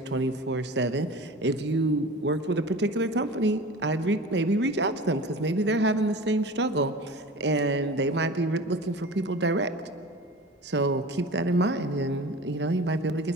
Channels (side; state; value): both; normal; correlation 0.36